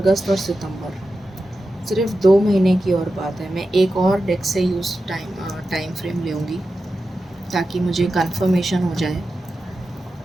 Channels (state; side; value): normal; both; correlation 0.91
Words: और सितंबर, सिर्फ 2 महीने की और बात है। मैं एक और डेक से यूज़ टाइम फ्रेम लूँगी ताकि मुझे कंफर्मेशन हो जाए